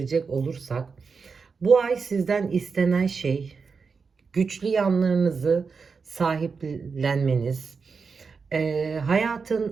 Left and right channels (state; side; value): quieter; left; 5.1 dB